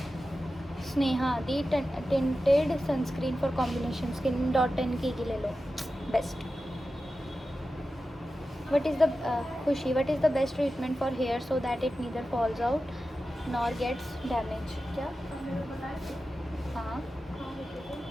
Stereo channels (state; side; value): normal; both; correlation 0.93